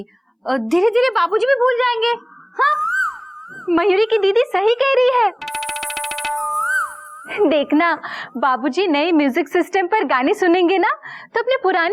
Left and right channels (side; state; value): both; identical; correlation 1.00